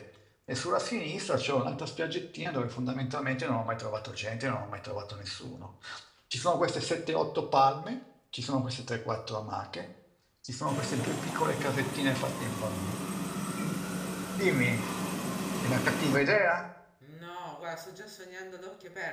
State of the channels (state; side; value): identical; both; correlation 1.00